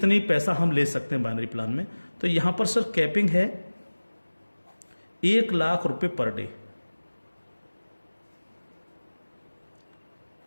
पैसा हम ले सकते हैं बाइनरी प्लान में। तो यहां पर सर कैपिंग है 1 लाख रुपए पर डे,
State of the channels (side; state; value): both; inverted; correlation -1.00